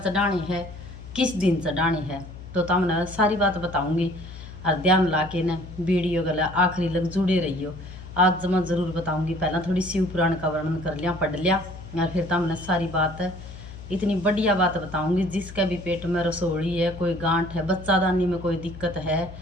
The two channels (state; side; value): noise; left; hum, 14 dB below the sound